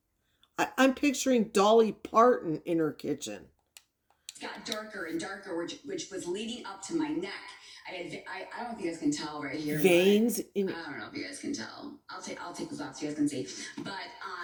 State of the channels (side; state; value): both; identical; correlation 1.00